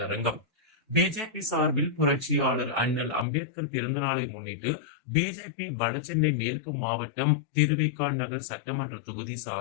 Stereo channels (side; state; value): right; drops out; at 3.2 s